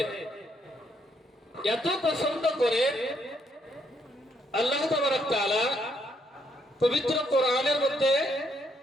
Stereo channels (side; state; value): both; normal; correlation 0.73